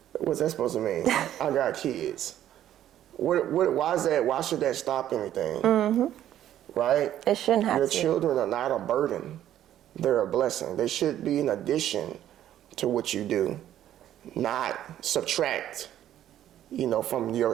What's that supposed to mean? I got kids. Why is that? Why should that stop anything? Right? It shouldn't have Your to. children are not a burden. They're a blessing. They should be an addition to what you do, not subtract, from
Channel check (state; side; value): quieter; left; 11.7 dB